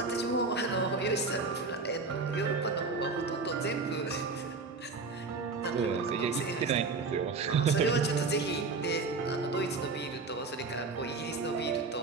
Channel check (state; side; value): quieter; left; 4.1 dB